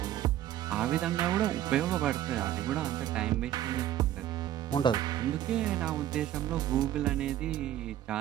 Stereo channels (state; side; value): quieter; left; 12.3 dB